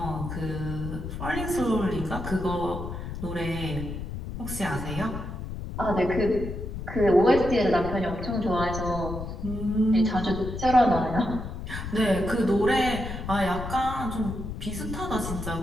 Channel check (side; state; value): left; noise; rumble, 7 dB below the sound